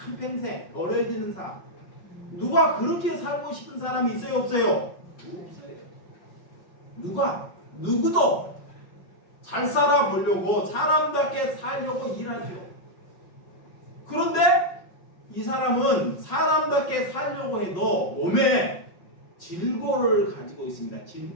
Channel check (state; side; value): late; right; 5.5 ms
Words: 어려지는 삶. 누가 그렇게 살고 싶은 사람이 있어요? 없어요? 없어요. 누구도 잘 살아보려고 사람답게 살려고 일하죠. 그런데 이 사람은 사람답게 살려고 해도 몸에 질고를 가지고 있습니다.